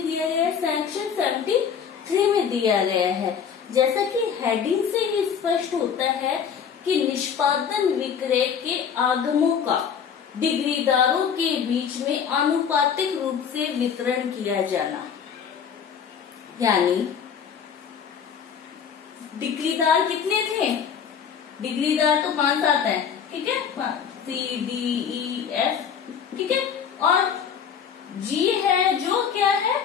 दिया गया है? सेक्शन 73 में दिया गया है। जैसा कि हेडिंग से ही स्पष्ट होता है कि निष्पादन विक्रय के आगमों का डिग्रीदारों के बीच में आनुपातिक रूप से वितरण किया जाना, यानी डिग्रीदार कितने थे? डिग्रीदार तो 5-7 है, ठीक है, CDEF, ठीक है। और जी है जो क्या है,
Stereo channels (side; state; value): right; quieter; 7.4 dB